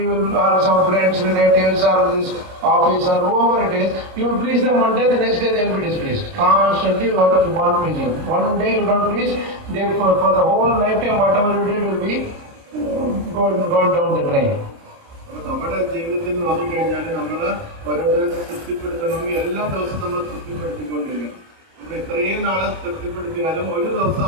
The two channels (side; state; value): left; late; 29 ms